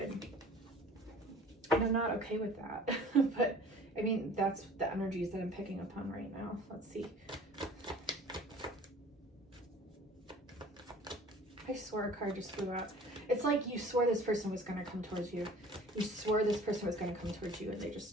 And I'm not okay with that. But I mean, that's the energies that I'm picking up on right now. Let's see. I swore a card just flew out. It's like you swore this person was going to come towards you. You swore this person was going to come towards you, and they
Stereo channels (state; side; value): normal; both; correlation 0.47